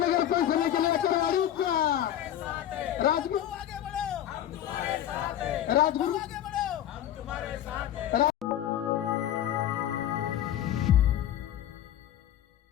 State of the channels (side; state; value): right; quieter; 11.4 dB